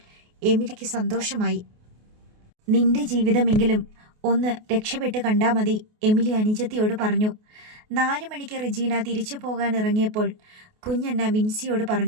എമിലിക്ക് സന്തോഷമായി. നിന്റെ ജീവിതമെങ്കിലും ഒന്ന് രക്ഷപ്പെട്ട് കണ്ടാൽ മതി, എമിലി അനുജത്തിയോട് പറഞ്ഞു. 4 മണിക്ക് റെജീന തിരിച്ചു പോകാൻ ഇറങ്ങിയപ്പോൾ കുഞ്ഞണ്ണ വിൻസിയോട്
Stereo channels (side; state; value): left; late; 28 ms